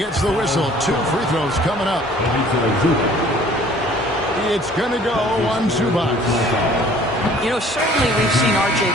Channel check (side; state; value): both; normal; correlation 0.53